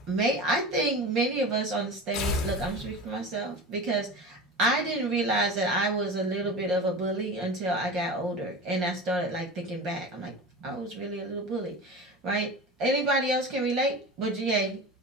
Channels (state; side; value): normal; both; correlation 0.31